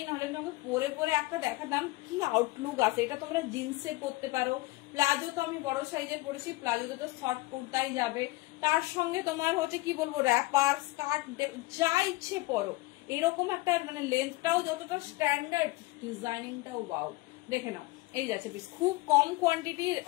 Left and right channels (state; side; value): quieter; right; 21.3 dB